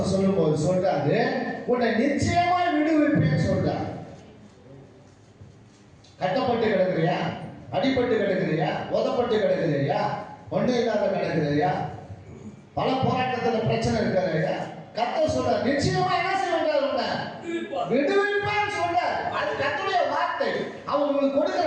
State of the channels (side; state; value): both; identical; correlation 1.00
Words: சொல்லும்போது சொல்றாரு, உன்னை நிச்சயமாய் விடுவிப்பேன்னு சொல்றாரு. கட்டப்பட்டு கிடக்குறியா? அடிபட்டு கிடக்குறியா? உதப்பட்டு கிடக்குறியா? ஒண்ணு இல்லாத கிடக்குறியா? பல போராட்டத்துல பிரச்சனை இருக்காருயா? கர்த்தர் சொல்றார், நிச்சயமா என்ன செய்வார்? உன்னை விடுவிப்பேன்னு சொல்றார். அது கர்த்தருடைய வார்த்தை. அவர் உங்களுக்கு